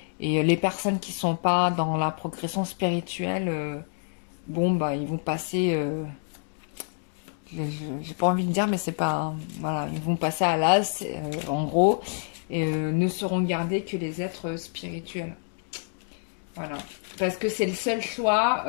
les personnes qui sont pas dans la progression spirituelle, bon bah ils vont passer. J'ai pas envie de dire, mais c'est pas. Voilà, ils vont passer à l'as, en gros, et ne seront gardés que les êtres spirituels. Voilà. Parce que c'est le seul choix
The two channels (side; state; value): right; silent; digital silence